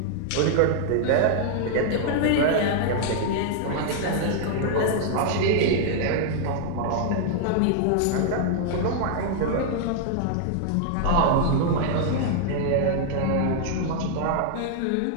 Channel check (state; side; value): different; both; correlation -0.01